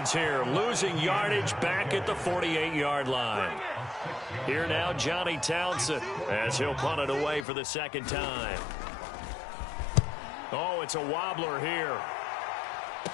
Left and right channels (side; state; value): right; drops out; at 7.5 s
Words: here, losing yardage back at the 48-yard line. Here now, Johnny Townsend, as he'll punt it away for the second time. Oh, it's a wobbler here.